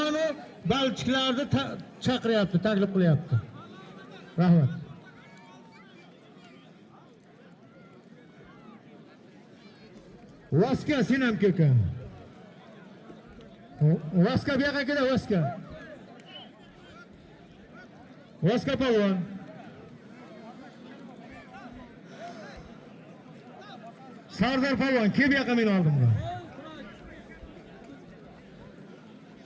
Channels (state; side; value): identical; both; correlation 1.00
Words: balchiqlarni chaqiryapti, taklif qilyapti. Rahmat. Vaska sinam keka. Vaska bu yoqqa kela, Vaska. Vaska polvon. Sardar polvon, kim bu yoqqa meni oldimga?